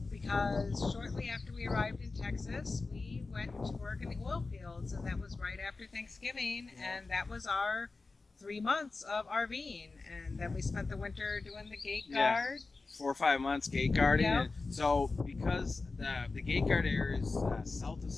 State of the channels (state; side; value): quieter; right; 3.8 dB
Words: because shortly after we arrived in Texas, we went to work in the oil fields, and that was right after Thanksgiving, and that was our 3 months of RVing, and then we spent the winter doing the gate Yeah. guard. 4 or 5 months gate guarding. Yeah. And so because the gate guard area is south of